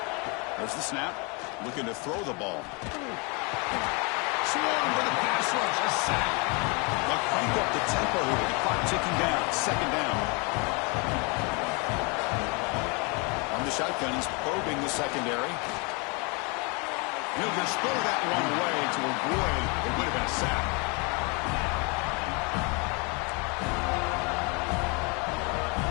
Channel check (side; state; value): right; quieter; 31.6 dB